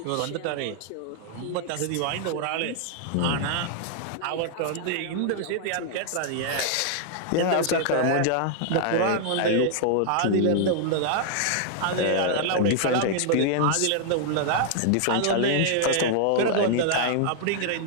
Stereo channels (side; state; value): both; different; correlation -0.01